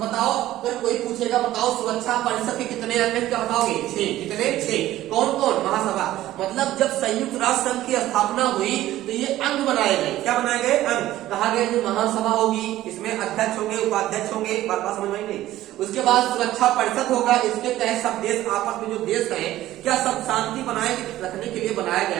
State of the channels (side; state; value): left; quieter; 14.6 dB